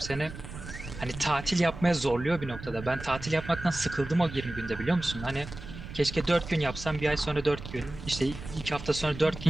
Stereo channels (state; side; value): noise; right; rumble, 12 dB below the sound